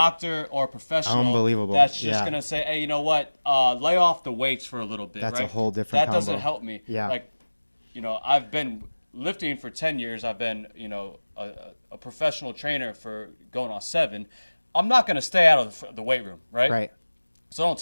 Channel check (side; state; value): both; inverted; correlation -1.00